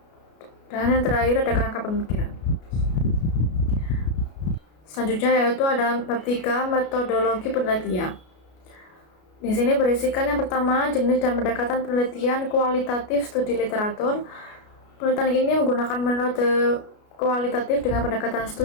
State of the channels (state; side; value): late; right; 33 ms